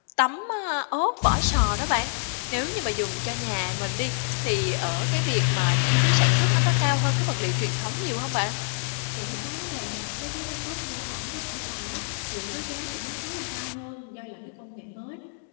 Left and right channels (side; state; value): right; silent; digital silence